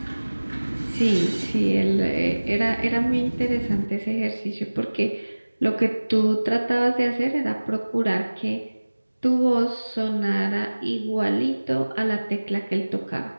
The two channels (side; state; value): both; inverted; correlation -1.00